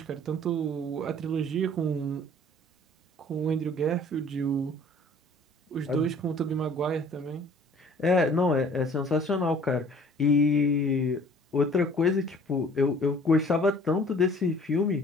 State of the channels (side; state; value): both; normal; correlation 0.52